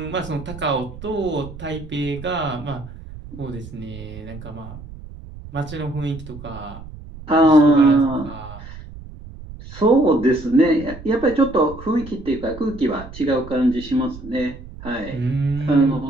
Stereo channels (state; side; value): noise; right; rumble, 15 dB below the sound